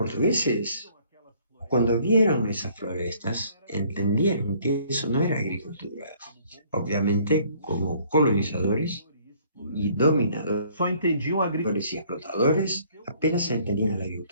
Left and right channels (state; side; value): inverted; both; correlation -0.60